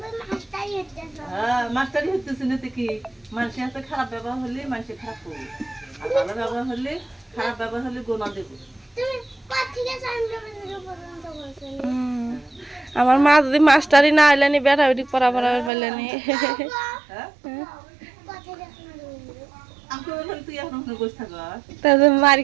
হ্যাঁ, মাস্টারি হইতেছে না তো কি, মানুষের হাতে খারাপ ব্যবহার হলে মানুষের খারাপ করবে, আর ভালো ব্যবহার হলে, খারাপ ব্যবহার হলে গোনা দেবো। আমার মা যদি মাস্টারি না আইলানি বেটা বেটি পড়া পড়া পাইলানি, হ্যাঁ, আমি তো বললাম তুই এখন ওখানে বসে থাকো। তাহলে মারি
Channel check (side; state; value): left; drops out; at 15.7 s